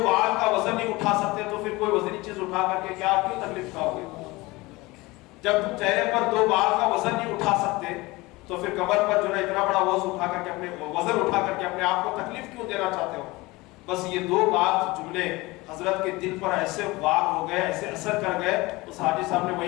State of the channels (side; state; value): right; quieter; 21.8 dB